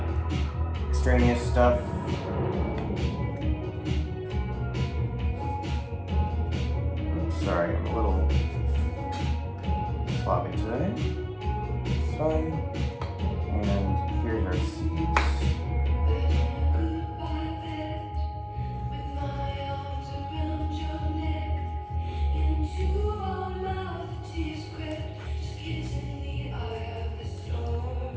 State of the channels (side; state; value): both; identical; correlation 1.00